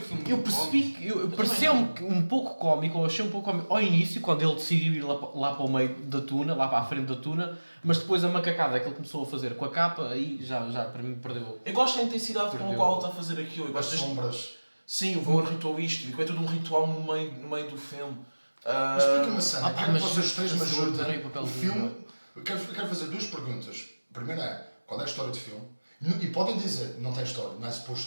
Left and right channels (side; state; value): both; inverted; correlation -1.00